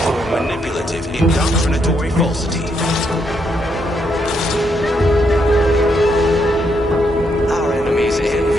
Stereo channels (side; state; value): both; normal; correlation 0.77